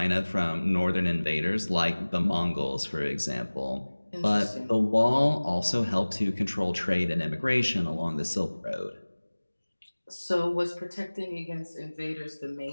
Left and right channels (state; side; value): inverted; both; correlation -1.00